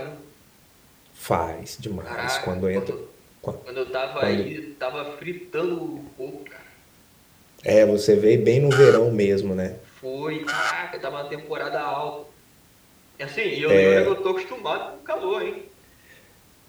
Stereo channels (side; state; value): both; identical; correlation 1.00